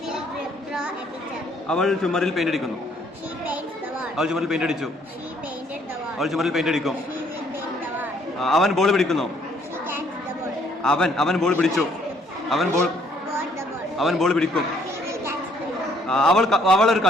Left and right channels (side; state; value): both; normal; correlation 0.65